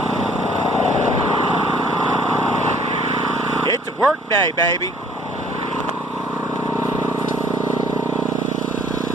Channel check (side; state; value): both; normal; correlation 0.58